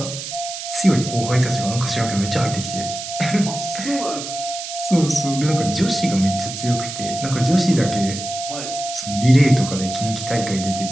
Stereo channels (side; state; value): right; noise; hiss, 8 dB below the sound